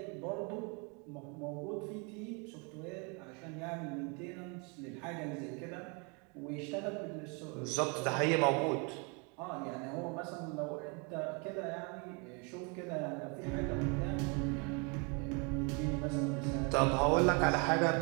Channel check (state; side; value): quieter; left; 32.6 dB